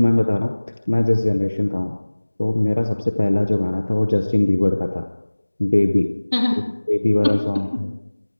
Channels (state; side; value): inverted; both; correlation -1.00